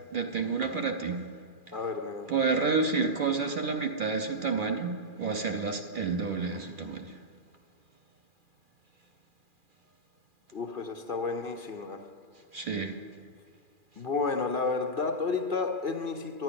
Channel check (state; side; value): late; left; 2.4 ms